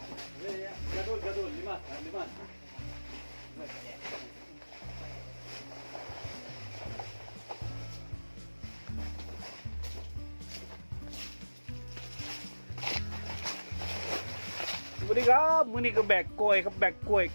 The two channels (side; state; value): both; inverted; correlation -1.00